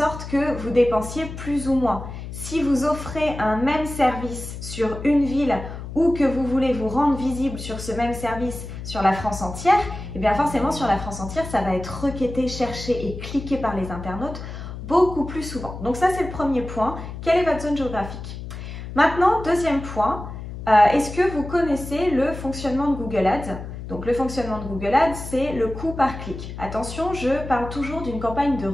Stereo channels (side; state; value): left; noise; hum, 9 dB below the sound